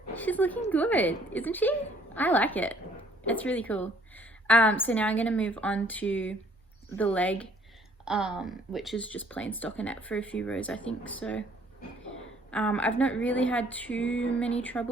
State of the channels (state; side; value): normal; both; correlation 0.60